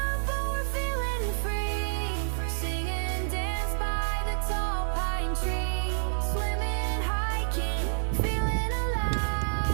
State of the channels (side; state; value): left; silent; digital silence